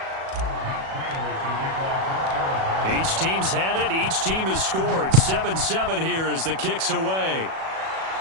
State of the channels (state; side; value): late; left; 37 ms